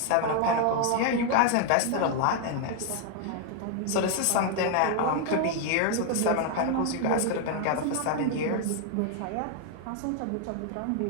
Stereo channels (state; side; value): different; both; correlation 0.00